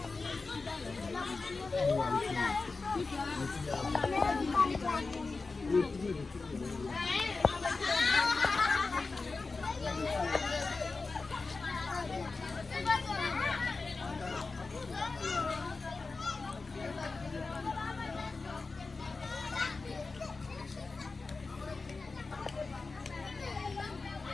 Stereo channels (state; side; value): quieter; right; 4.0 dB